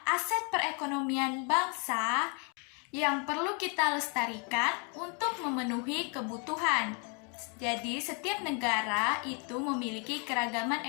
aset perekonomian bangsa yang perlu kita lestarikan untuk memenuhi kebutuhan. Jadi, setiap negara itu memiliki keragaman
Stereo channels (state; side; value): quieter; right; 36.1 dB